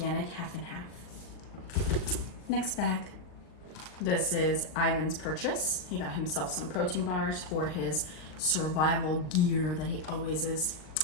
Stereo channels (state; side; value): late; right; 39 ms